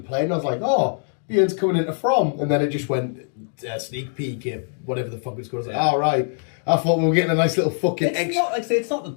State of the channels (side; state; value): right; silent; 61 dB below the other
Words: play, and I was like, oh, Bjorn's coming into From, and then it just went sneak peek at whatever the fuck it's called. I was like, all right. I thought we were getting a nice little fucking It's not, like I say, it's not the